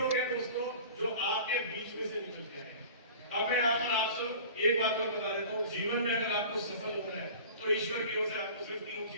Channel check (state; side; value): inverted; both; correlation -0.41